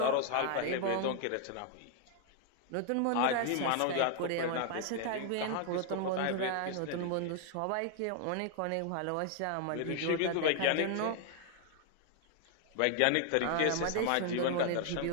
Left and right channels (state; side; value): different; both; correlation 0.00